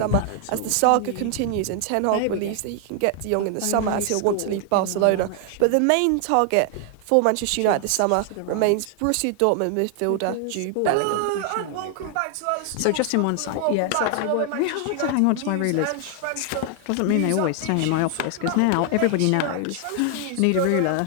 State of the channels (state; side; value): different; both; correlation 0.00